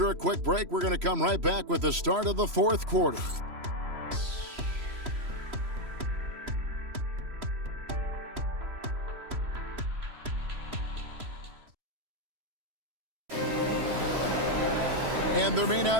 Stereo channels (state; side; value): late; left; 3.0 ms